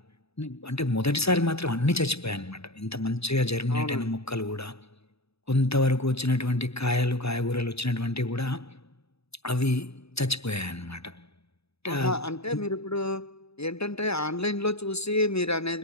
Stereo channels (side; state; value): right; late; 0.78 ms